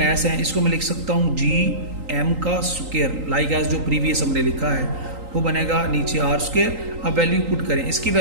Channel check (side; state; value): left; late; 3.8 ms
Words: हैं, इसको मैं लिख सकता हूँ जी एम का स्क्वायर, लाइक एज जो प्रीवियस हमने लिखा है वो बनेगा नीचे आर स्क्वायर। अब वैल्यू पुट करें, इसकी